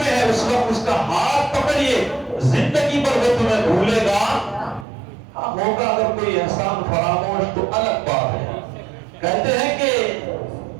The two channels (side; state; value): left; drops out; at 4.9 s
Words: ہے اس وقت اس کا ہاتھ پکڑیے, زندگی پر وہ تمہیں بھولے گا. ہاں ہوگا اگر کوئی احسان فراموش تو الگ بات ہے. کہتے ہیں کہ